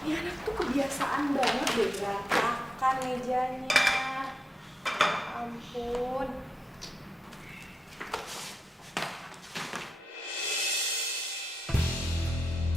Ini anak tuh kebiasaan banget deh berantakan mejanya. Ya ampun.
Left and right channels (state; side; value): normal; both; correlation 0.89